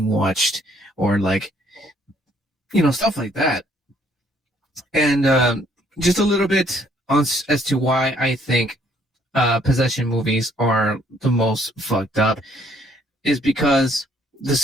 watched, or like, stuff like that. And just a little bit on as to why I think possession movies are the most fucked up, is because the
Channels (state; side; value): normal; both; correlation 0.65